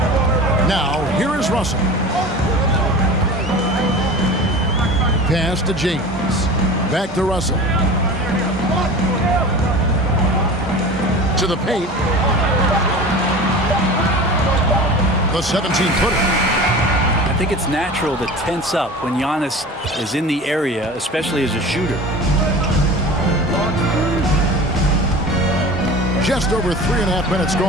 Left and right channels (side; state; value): both; normal; correlation 0.36